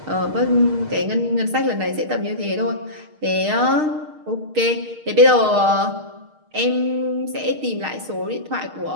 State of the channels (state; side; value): late; left; 6.5 ms